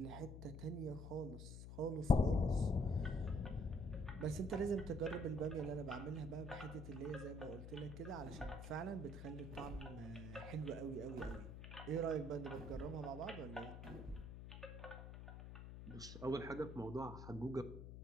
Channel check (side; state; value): left; noise; hum, 10 dB below the sound